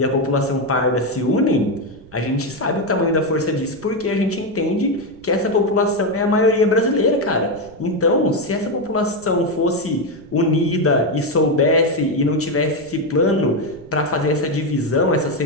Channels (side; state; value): right; noise; rumble, 23 dB below the sound